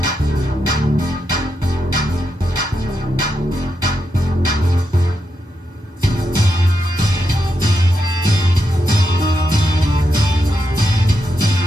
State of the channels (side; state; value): both; normal; correlation 0.84